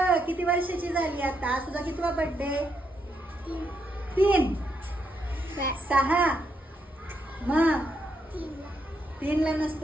किती वर्षाची झाली आता? आज तुझा कितवा बर्थडे? 3. 6. मग 3 ला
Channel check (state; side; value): normal; both; correlation 0.79